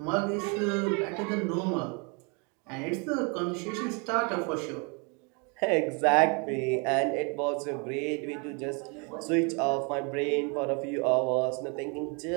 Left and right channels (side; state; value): left; quieter; 33.3 dB